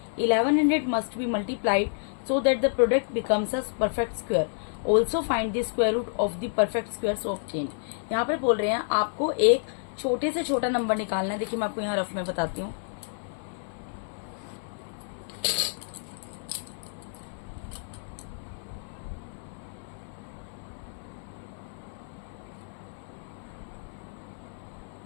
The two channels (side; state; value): right; silent; 58 dB below the other